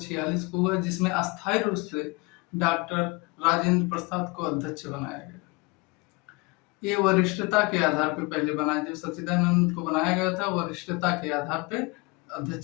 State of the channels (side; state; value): right; quieter; 26.4 dB